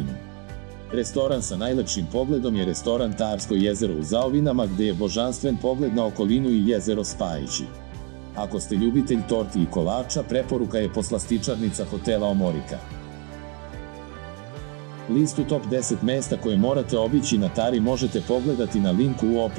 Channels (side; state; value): left; quieter; 35.9 dB